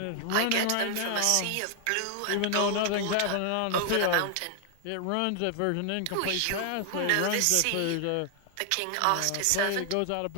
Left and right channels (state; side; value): different; both; correlation 0.00